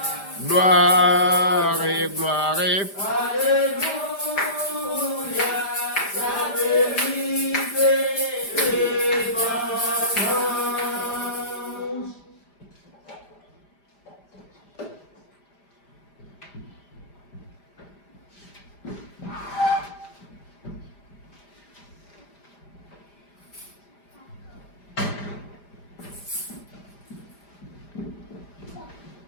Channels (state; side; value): late; right; 5.0 ms